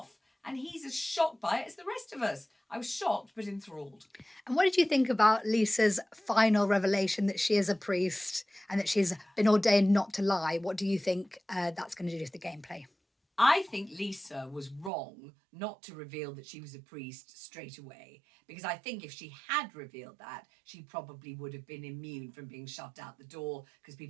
And he's as shocked by it as the rest of us. I was shocked but enthralled. And what did you think about Lisa's final revelation that she is a priest and that she's been ordained not to lie? What do you think that's going to do to the gameplay? I think Lisa was wrong not to reveal that she was a priest straight away, because I think if she had revealed that, she probably would have been immune from being shoved out the door, because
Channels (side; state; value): left; drops out; at 14.9 s